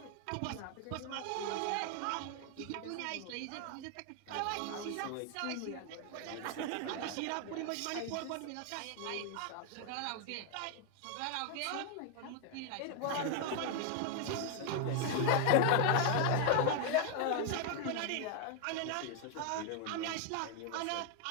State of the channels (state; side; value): different; both; correlation 0.00